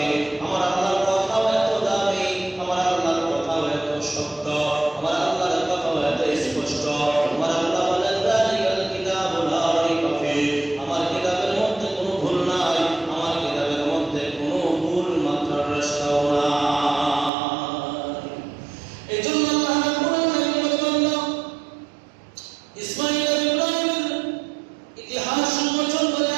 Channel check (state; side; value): drops out; left; at 17.3 s